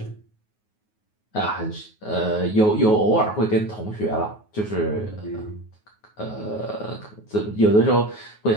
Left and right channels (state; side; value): late; right; 9.4 ms